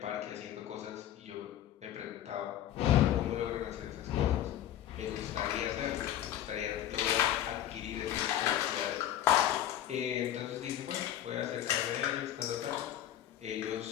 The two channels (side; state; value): right; quieter; 11.7 dB